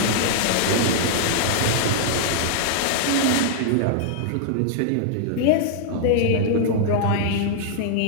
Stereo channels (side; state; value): both; different; correlation -0.01